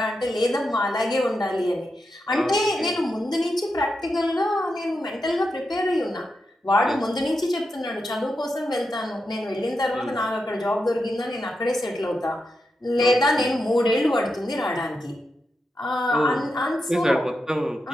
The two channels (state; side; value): normal; both; correlation 0.87